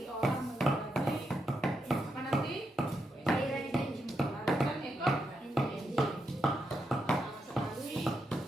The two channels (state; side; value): normal; both; correlation 0.83